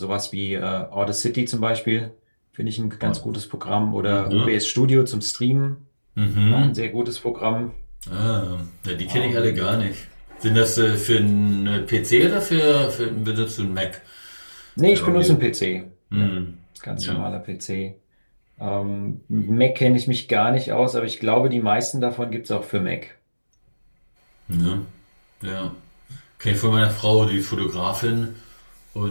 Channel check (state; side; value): inverted; both; correlation -1.00